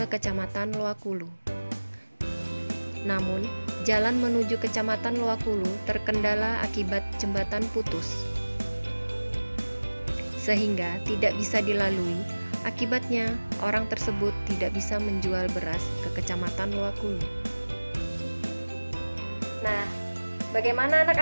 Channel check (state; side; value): inverted; both; correlation -1.00